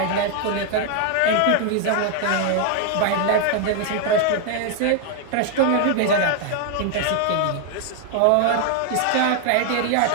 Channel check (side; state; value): both; different; correlation 0.00